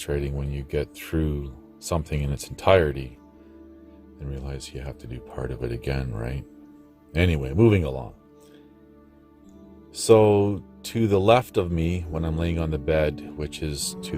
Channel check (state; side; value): identical; both; correlation 1.00